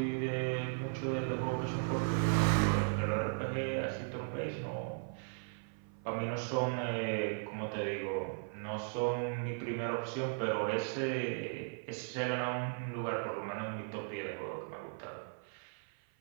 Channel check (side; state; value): left; silent; 53 dB below the other